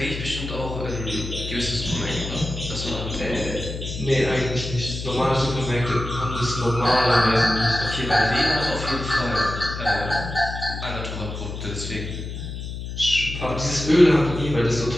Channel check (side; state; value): left; noise; hum, 7 dB below the sound